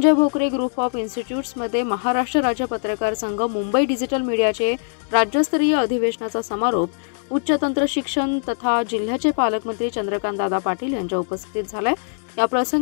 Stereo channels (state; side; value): silent; right; digital silence